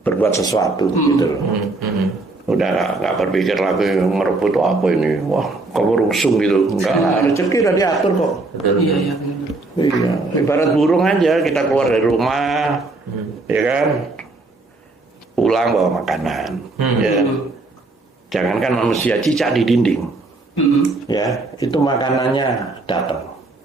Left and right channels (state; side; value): quieter; left; 3.3 dB